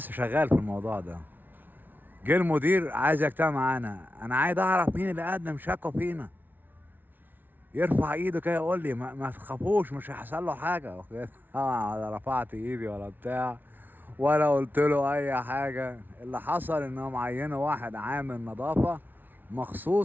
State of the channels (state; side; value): late; left; 0.088 ms